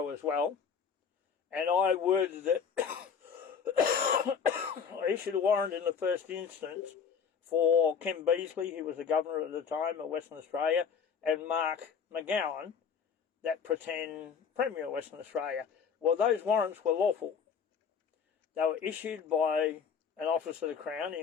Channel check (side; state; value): right; quieter; 6.6 dB